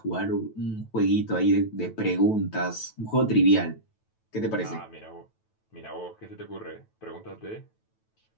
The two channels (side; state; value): right; late; 9.1 ms